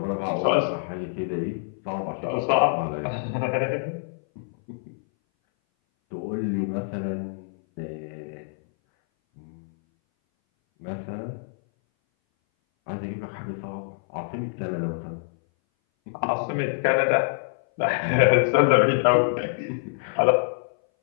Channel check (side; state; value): right; silent; 59 dB below the other